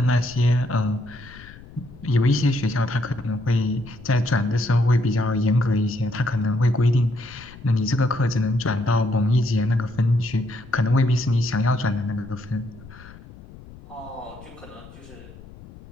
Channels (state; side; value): noise; left; rumble, 19 dB below the sound